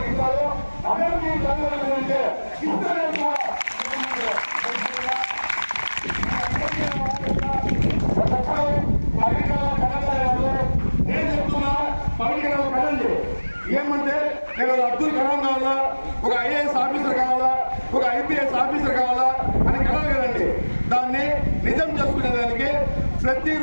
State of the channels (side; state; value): both; inverted; correlation -1.00